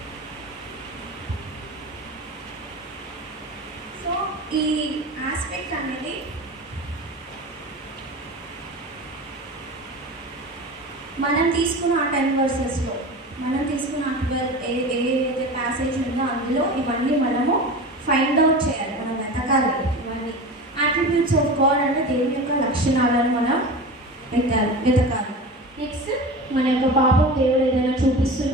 So ఈ aspect అనేది మనం తీసుకున్న ఆ 10 వర్సెస్లో, మనం తీసుకున్న 12 ఏదైతే passage ఉందో అందులో ఇవన్నీ మనము ఫైండ్ అవుట్ చేయాలి, మనం వెతకాలి. ఇవన్నీ అట్రిబ్యూట్స్ ఆఫ్ గాడ్ అంటే దేవుని యొక్క లక్షణాలను మనం వెతకాలి. నెక్స్ట్ మన యొక్క పాపం దేవుడు ఏదైనా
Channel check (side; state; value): both; normal; correlation 0.31